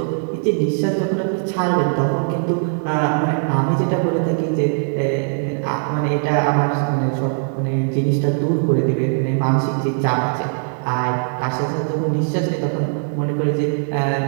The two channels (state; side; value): silent; left; 66 dB below the other